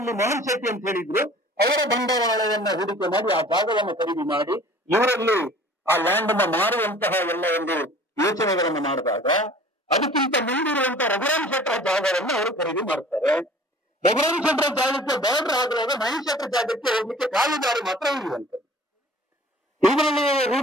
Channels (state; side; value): normal; both; correlation 0.48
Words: ಮೋಹನ್ ಶೆಟ್ಟಿ ಅಂತ ಹೇಳಿದ್ರು, ಅವರ ಬಂಡವಾಳವನ್ನ ಹೂಡಿಕೆ ಮಾಡಿ ಆ ಜಾಗವನ್ನು ಖರೀದಿ ಮಾಡಿ ಇವರಲ್ಲಿ ಆ ಲ್ಯಾಂಡ್ ಅನ್ನ ಮಾರುವಂತಹ ಎಲ್ಲ ಒಂದು ಯೋಚನೆಗಳನ್ನು ಮಾಡಿದಾಗ ಅದಕ್ಕಿಂತ ಮುಂದಿರುವಂತಹ ರಘುರಾಮ್ ಶೆಟ್ಟರ ಜಾಗವನ್ನು ಅವರು ಖರೀದಿ ಮಾಡ್ತಾರೆ. ರಘುರಾಮ್ ಶೆಟ್ಟರ ಜಾಗಕ್ಕೆ ಬಾರ್ಡರ್ ಆಗುವಾಗ ಮಹೇಶ್ ಶೆಟ್ಟರ ಜಾಗಕ್ಕೆ ಹೋಗ್ಲಿಕ್ಕೆ ಕಾಲುದಾರಿ ಮಾತ್ರ ಉಳಿಯುವಂಥದ್ದು. ಇದರಲ್ಲಿ